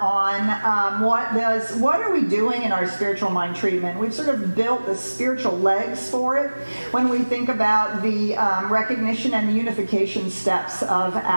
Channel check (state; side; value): inverted; both; correlation -1.00